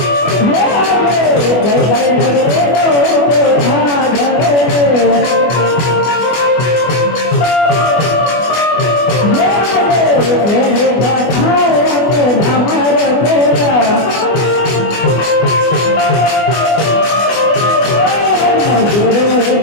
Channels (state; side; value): late; right; 24 ms